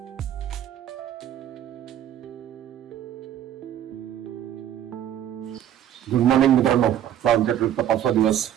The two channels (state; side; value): quieter; left; 10.8 dB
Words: गुड मॉर्निंग मित्रांनो, आमच्या ट्रिपचा 5वा दिवस